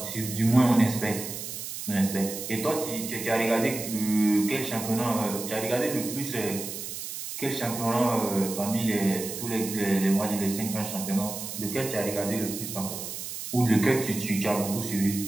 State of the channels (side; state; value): right; noise; hiss, 7 dB below the sound